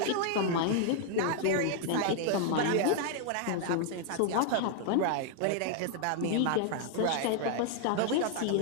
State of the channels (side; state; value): both; different; correlation 0.00